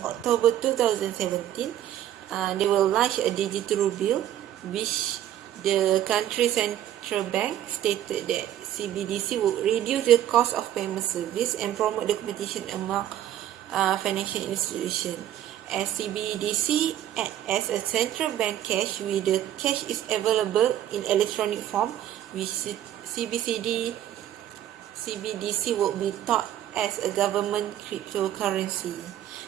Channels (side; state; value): left; quieter; 11.8 dB